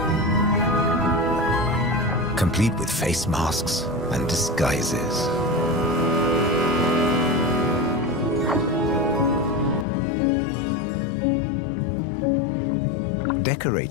Complete with face masks and disguises.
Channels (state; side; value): drops out; right; at 9.9 s